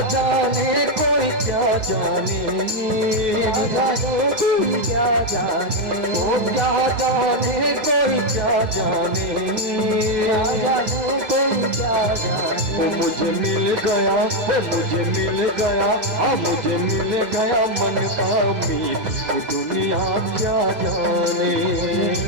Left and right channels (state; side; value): late; left; 2.1 ms